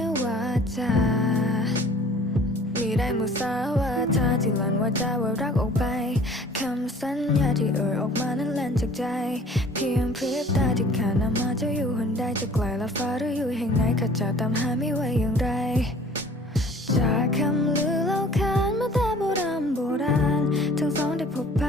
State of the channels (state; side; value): normal; both; correlation 0.50